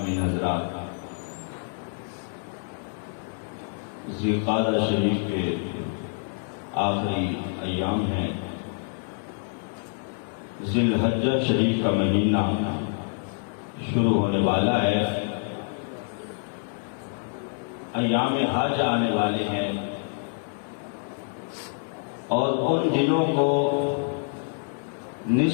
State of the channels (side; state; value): right; silent; digital silence